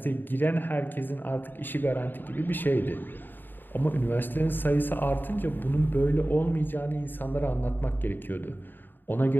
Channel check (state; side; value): late; right; 0.092 ms